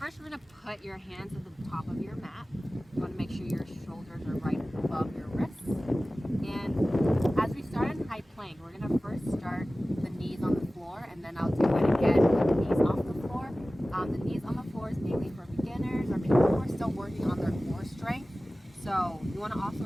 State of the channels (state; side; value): normal; both; correlation 0.97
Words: we're going to put your hands at the top of your mat. You want to make sure your shoulders are right above your wrists. And as we start in high plank, we're going to first start the knees on the floor, and then I'll do it again with the knees off the floor. The knees on the floor is mainly for beginners or people who are still working on their core strength. So you want to also